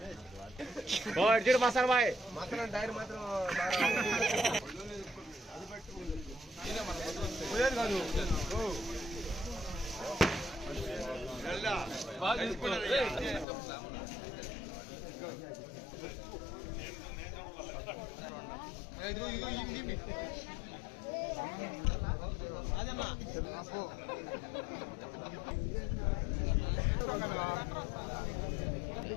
మసాలా బాయ్ మసాలా డైర్ మాత్రం అదమ్మా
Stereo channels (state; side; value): drops out; right; at 13.5 s